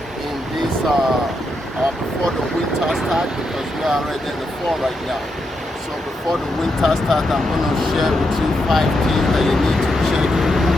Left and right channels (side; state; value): both; normal; correlation 0.83